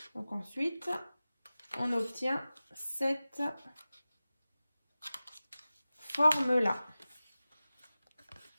Donc ensuite, on obtient cette forme-là.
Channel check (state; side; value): inverted; both; correlation -0.96